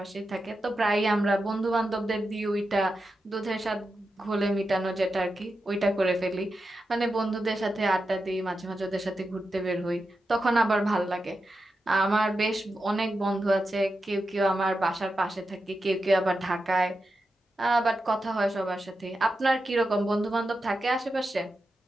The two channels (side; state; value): both; normal; correlation 0.89